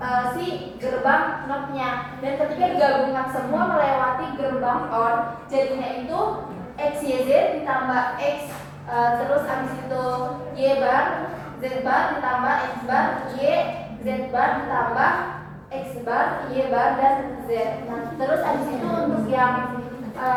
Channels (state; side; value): identical; both; correlation 1.00